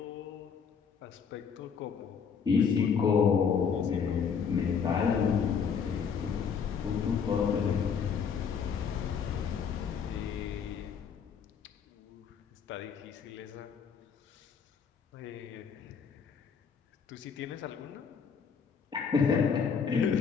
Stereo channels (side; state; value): right; quieter; 6.6 dB